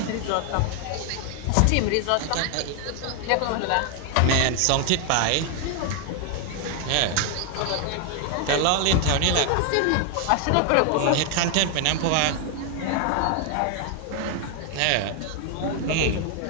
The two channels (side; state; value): both; different; correlation 0.00